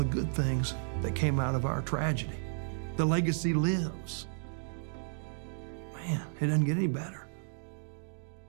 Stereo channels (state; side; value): silent; left; digital silence